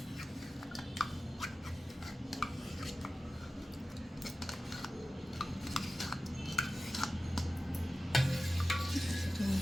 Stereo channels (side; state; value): both; normal; correlation 0.94